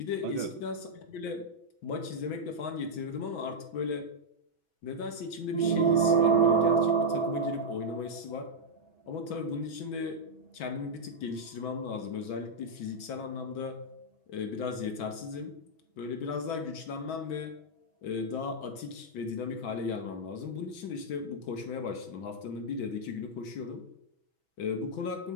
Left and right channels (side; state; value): right; late; 6.2 ms